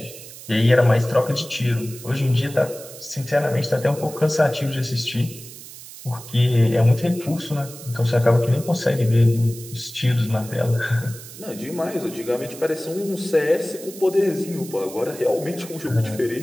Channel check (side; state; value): right; noise; hiss, 15 dB below the sound